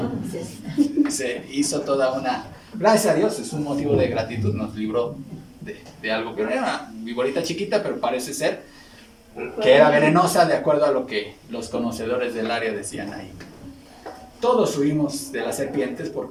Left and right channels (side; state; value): both; identical; correlation 1.00